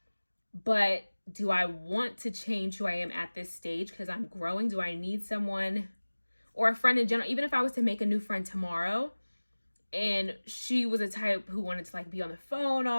But do I want to change who I am at this stage because I'm growing? Do I need someone or a friend in general? Even if I was to make a new friend tomorrow and she was a type who wanted to like be on the phone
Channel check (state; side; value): inverted; both; correlation -1.00